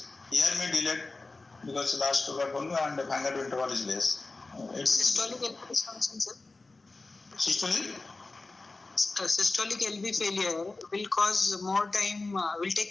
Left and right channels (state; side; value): quieter; right; 3.5 dB